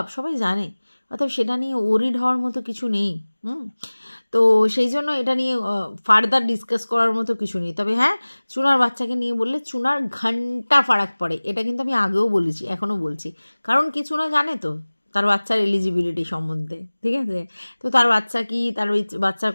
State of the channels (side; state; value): both; inverted; correlation -1.00